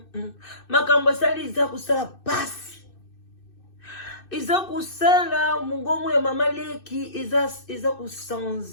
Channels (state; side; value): late; right; 2.6 ms